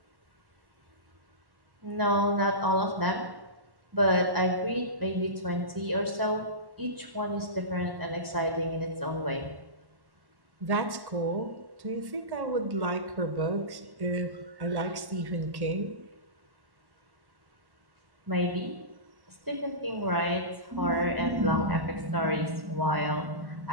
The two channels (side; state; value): left; late; 1.1 ms